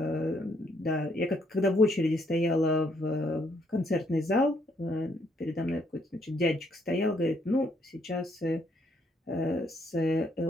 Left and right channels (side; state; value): both; normal; correlation 0.71